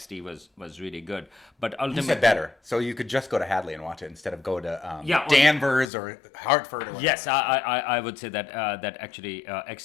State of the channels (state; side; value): drops out; right; at 5.9 s